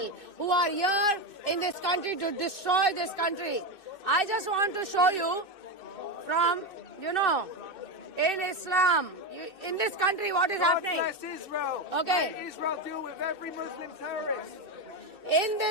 who are here in this country to destroy this country. I just want to show you from, you know, in Islam, in this country, what is happening? God bless Israel. Okay. Let Israel deal with every Muslim terrorist. In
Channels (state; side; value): late; left; 2.6 ms